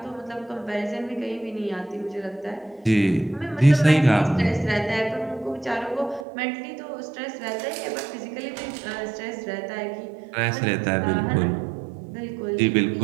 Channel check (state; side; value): drops out; left; at 6.2 s